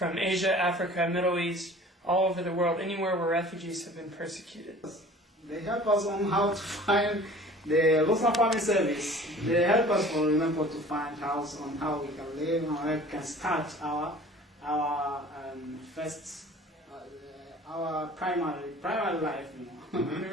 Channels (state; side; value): normal; both; correlation 0.46